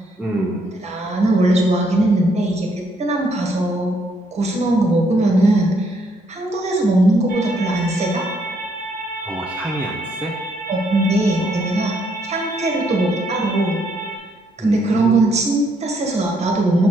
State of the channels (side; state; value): both; normal; correlation 0.71